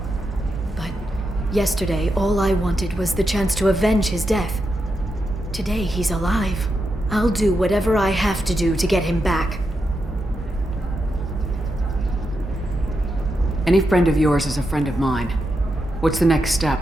But yesterday, all I wanted was the chance to avenge his death. Today, he's alive. I'll do whatever I have to do to get him back. Any friend of yours is a friend of mine. What's the next step?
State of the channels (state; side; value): normal; both; correlation 0.86